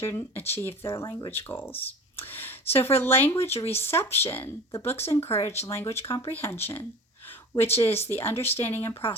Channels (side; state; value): both; normal; correlation 0.38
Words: achieve their language goals. So for language reception, the books encourage language comprehension, which is the understanding and